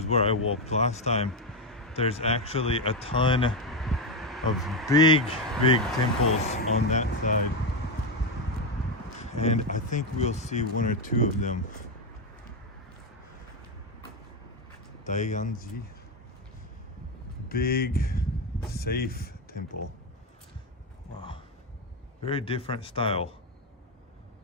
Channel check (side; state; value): both; normal; correlation 0.08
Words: where I walked last time, there's actually a ton of big temples on that side, and I think we'll see one or two of them. Ginzanji, big safe temple. Wow, very different style.